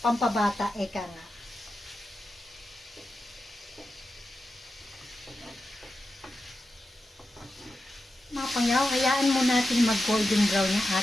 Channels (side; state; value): both; normal; correlation 0.90